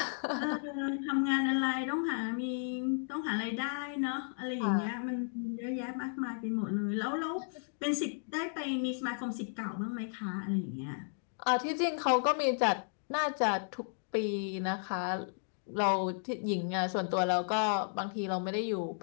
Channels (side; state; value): right; silent; digital silence